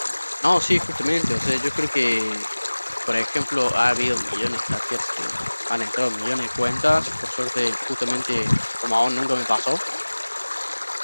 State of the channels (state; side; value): inverted; both; correlation -1.00